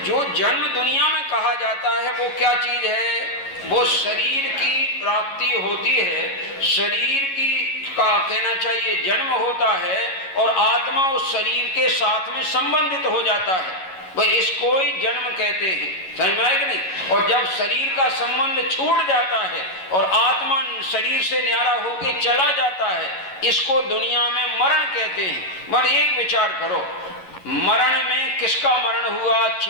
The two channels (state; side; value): late; right; 11 ms